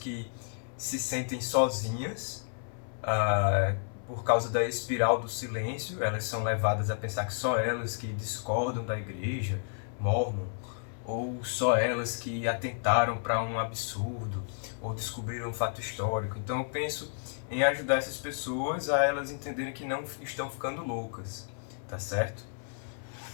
se sentem sozinhas por causa da espiral do silêncio. Elas são levadas a pensar que só elas que discordam da igreja mormon, ou só elas que atentaram para um absurdo, ou descobriram um fato histórico. Então eu penso em ajudar essas pessoas a elas entenderem que não estão ficando loucas, tá certo?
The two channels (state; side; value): silent; right; 57 dB below the other